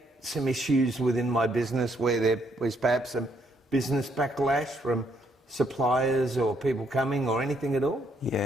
some issues within my business where there was perhaps some business backlash from suppliers or people coming or anything at all?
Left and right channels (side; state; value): both; normal; correlation 0.72